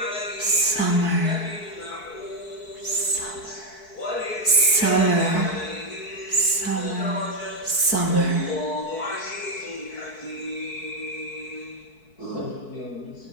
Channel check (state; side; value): late; right; 4.6 ms